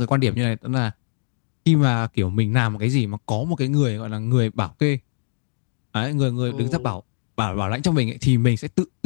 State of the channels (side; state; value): right; silent; digital silence